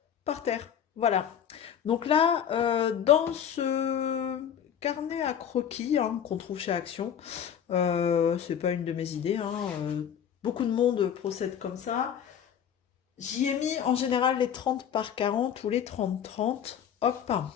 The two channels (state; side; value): quieter; right; 8.7 dB